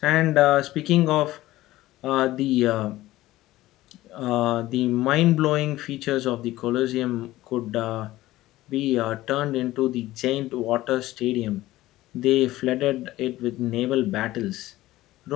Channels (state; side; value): quieter; right; 16.6 dB